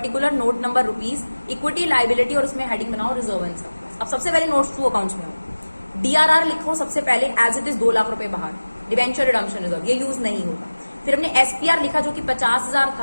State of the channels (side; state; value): both; inverted; correlation -1.00